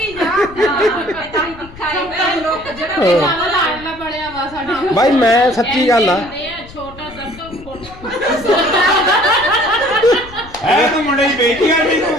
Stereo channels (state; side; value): noise; left; rumble, 19 dB below the sound